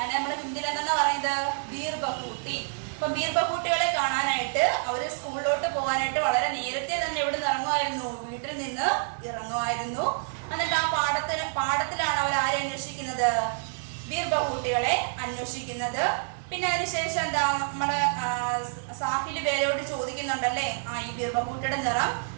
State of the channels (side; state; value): left; silent; digital silence